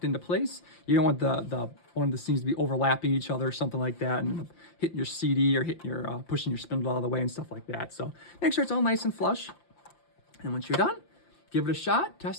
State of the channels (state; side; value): late; right; 5.8 ms